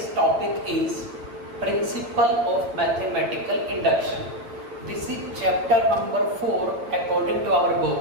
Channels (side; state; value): left; late; 9.0 ms